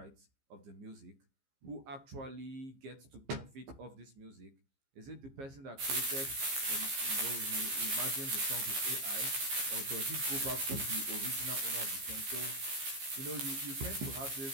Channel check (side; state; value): left; late; 15 ms